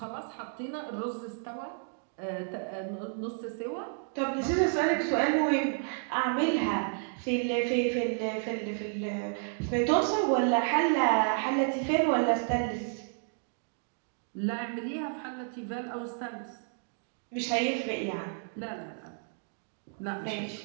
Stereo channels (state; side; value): silent; left; 57 dB below the other